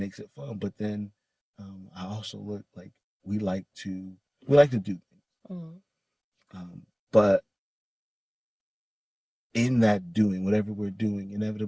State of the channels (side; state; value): both; identical; correlation 1.00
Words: it fun. But then, I also look like we like to do things, but in that doing, whatever we're doing,